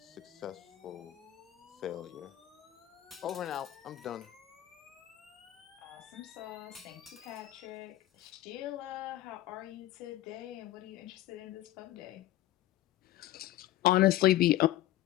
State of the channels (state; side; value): quieter; right; 14.8 dB